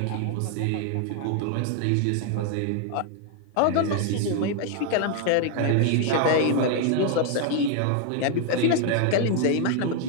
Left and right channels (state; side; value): different; both; correlation 0.00